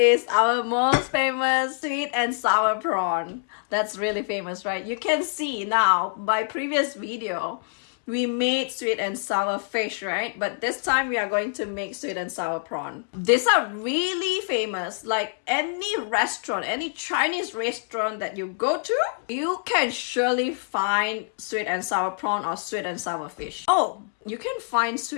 our most famous sweet and sour prawn. That's really famous, right? You can see now by previous video, we made sweet and sour fish, right? But this time we are going to make sweet and sour prawn. These are really famous. Like any restaurant, any Chinese restaurant that you go to, you can surely find sweet and sour prawn or sweet and sour fish. Oh, you can find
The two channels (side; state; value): right; silent; digital silence